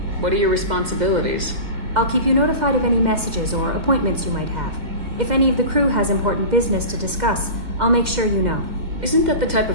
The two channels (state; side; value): late; left; 2.1 ms